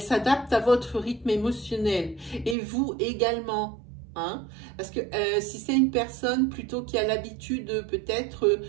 s'adapte à votre rythme émotionnel. Et vous également. Hein? Parce que si c'est une personne plutôt qui a l'habitude peut-être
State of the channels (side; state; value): left; drops out; at 2.6 s